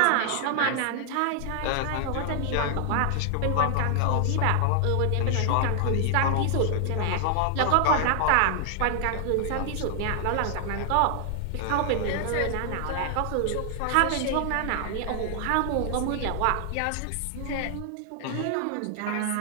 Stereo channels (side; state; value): both; different; correlation 0.00